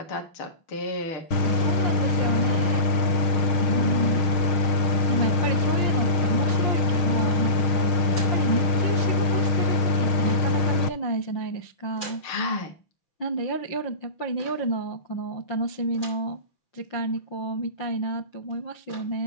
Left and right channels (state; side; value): late; right; 6.4 ms